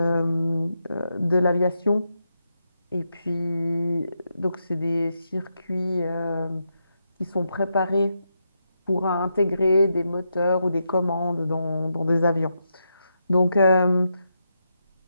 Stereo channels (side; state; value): both; inverted; correlation -0.84